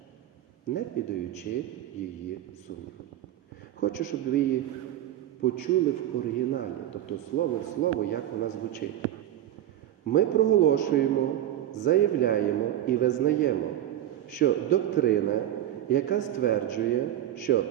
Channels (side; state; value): left; quieter; 12.2 dB